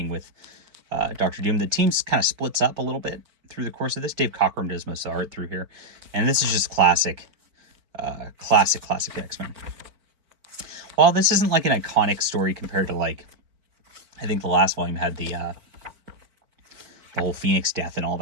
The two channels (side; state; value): left; late; 4.6 ms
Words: with Dr. Doom. The team kind of splits up a little bit through the course of this. Dave Cockrum does most of the art through here. And this is just classic X-Men. While this isn't like an iconic story compared to like, I think the last volume had the whole Phoenix death and all